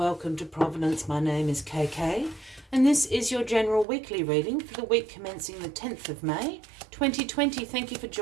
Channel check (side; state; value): left; drops out; at 3.9 s